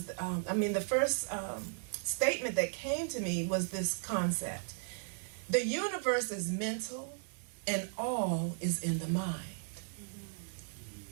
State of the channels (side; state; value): left; silent; 54 dB below the other